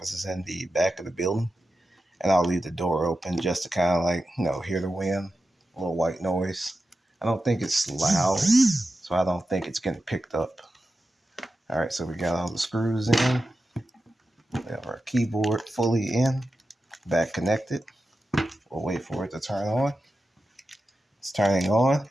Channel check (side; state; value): both; normal; correlation 0.91